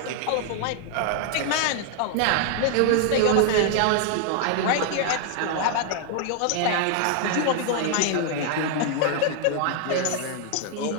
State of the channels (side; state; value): both; different; correlation 0.00